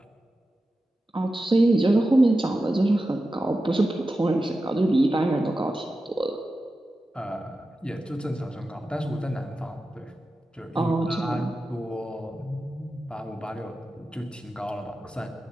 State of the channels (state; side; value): normal; both; correlation 0.93